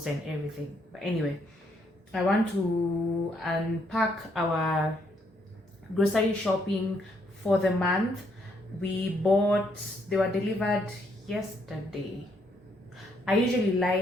and everything. But anyway, I want to unpack our grocery shopping for the month. They were delivered yesterday. I usually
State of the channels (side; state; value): both; normal; correlation 0.72